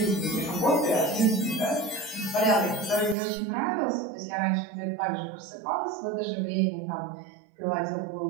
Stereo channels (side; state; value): left; drops out; at 3.2 s